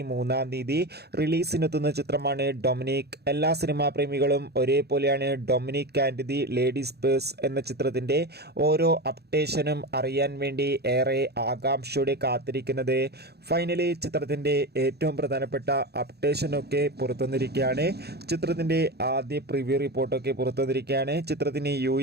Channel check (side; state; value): left; late; 0.47 ms